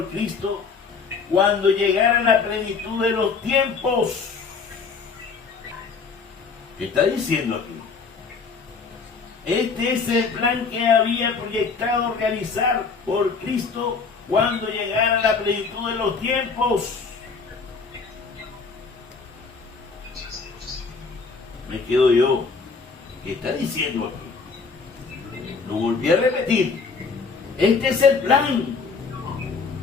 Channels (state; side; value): quieter; right; 4.9 dB